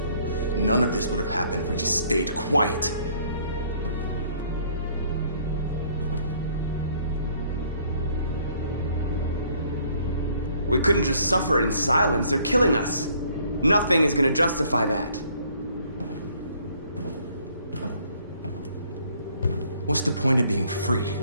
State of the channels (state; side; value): inverted; both; correlation -0.61